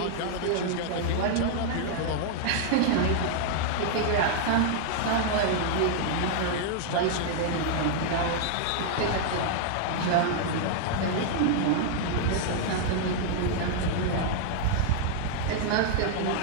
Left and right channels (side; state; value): both; different; correlation -0.01